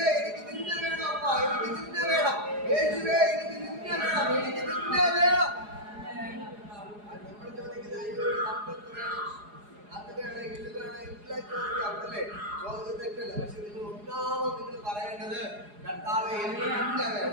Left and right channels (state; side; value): late; left; 4.8 ms